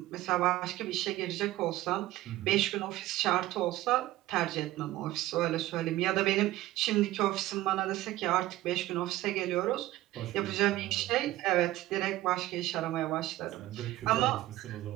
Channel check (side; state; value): left; quieter; 16.1 dB